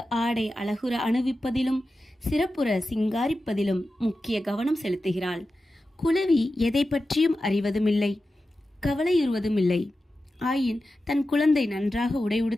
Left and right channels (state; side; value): normal; both; correlation 0.93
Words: ஆடை அழகுற அணிவிப்பதிலும் சிறப்புற சிங்காரிப்பதிலும் முக்கிய கவனம் செலுத்துகிறாள். குளவி எதை பற்றியும் அறிவதுமில்லை, கவலையுறுவதுமில்லை. ஆயின் தன் குழந்தை நன்றாக உடை